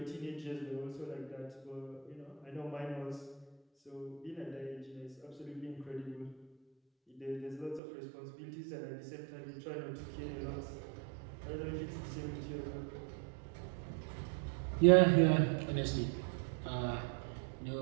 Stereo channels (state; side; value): drops out; left; at 7.8 s